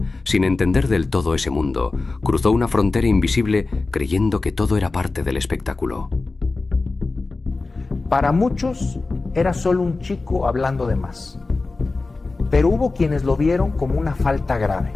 sin entender del todo ese mundo, cruzó una frontera invisible creyendo que todo era parte del espectáculo. Para muchos era solo un chico hablando de más, pero hubo quienes lo vieron como una falta grave.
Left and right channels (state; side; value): quieter; right; 3.6 dB